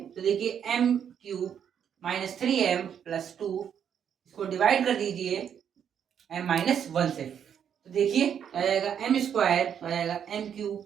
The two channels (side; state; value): left; quieter; 8.5 dB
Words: देखिए m cube minus 3m plus 2, इसको डिवाइड कर दीजिए m माइनस 1 से, तो देखिए आ जाएगा m स्क्वायर, आ जाएगा m